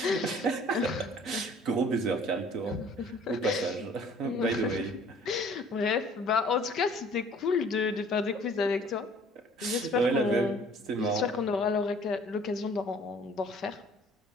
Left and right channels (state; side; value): normal; both; correlation 0.54